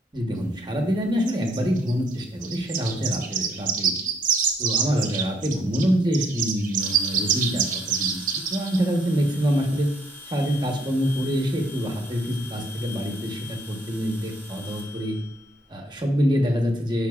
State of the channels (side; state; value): both; normal; correlation 0.69